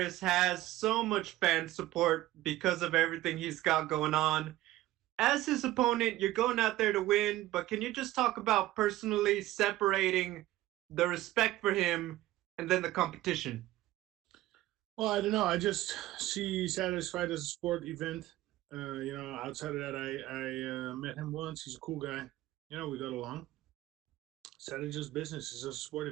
has so much fan support because of everything he's got going on. As his opponent, you're going out there to win, but can you just talk about personally separating the respect for him and then the competition? Well, I don't know. I just see Saturday's fight as a sport event. Outside of that, I met him once. He's a cool guy. We got along. Saturday's just business. It's just a sport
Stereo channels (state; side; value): quieter; left; 16.0 dB